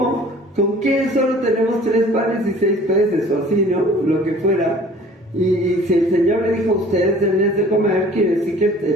¿Con qué? Solo tenemos 3 panes y 6 peces, o así, ¿no? Lo que fuera. Y si el Señor le dijo, ustedes denles de comer, quiere decir que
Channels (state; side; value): normal; both; correlation 0.49